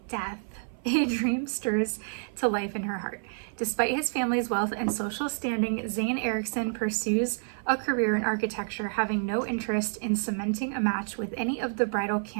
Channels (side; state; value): left; silent; 55 dB below the other